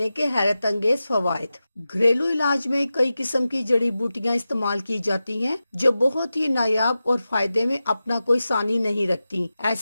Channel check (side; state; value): both; inverted; correlation -0.93